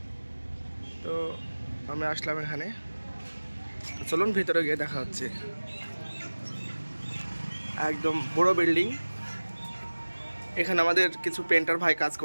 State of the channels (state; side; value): inverted; both; correlation -1.00